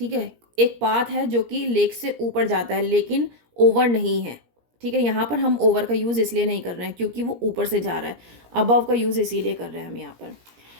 है। एक पाथ है जो कि लेक से ऊपर जाता है लेकिन ओवर नहीं है, ठीक है। यहाँ पर हम ओवर का यूज़ इसलिए नहीं कर रहे हैं क्योंकि वो ऊपर से जा रहा है, अबव का यूज़ इसीलिए कर रहे हैं हम यहाँ पर।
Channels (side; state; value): left; late; 17 ms